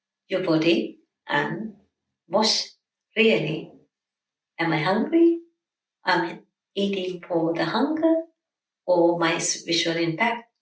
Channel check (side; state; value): both; identical; correlation 1.00